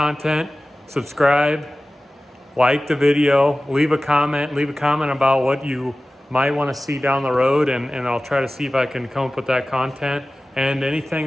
subscribe, like the video, leave a comment about what you might want to see down the road, and I'll try to see if I can come up with that content. And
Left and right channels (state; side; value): normal; both; correlation 0.97